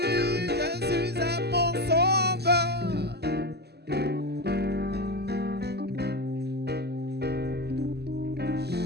Jésus est mon sauveur.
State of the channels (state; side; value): late; left; 0.47 ms